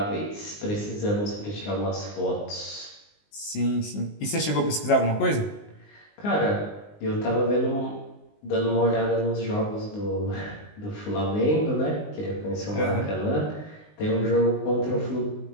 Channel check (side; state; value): right; late; 19 ms